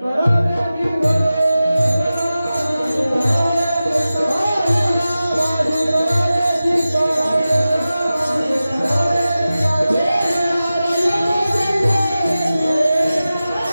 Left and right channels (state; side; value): inverted; both; correlation -0.95